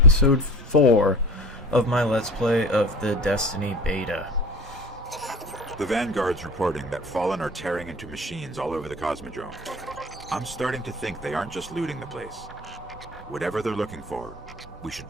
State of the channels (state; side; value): normal; both; correlation 0.38